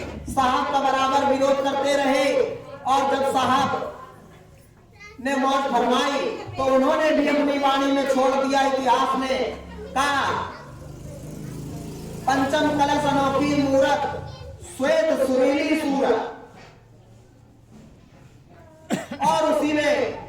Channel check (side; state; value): both; identical; correlation 1.00